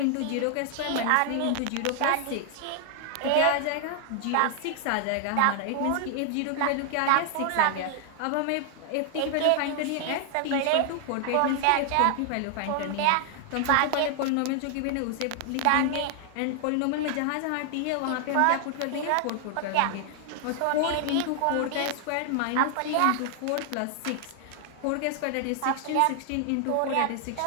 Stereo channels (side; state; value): both; different; correlation 0.00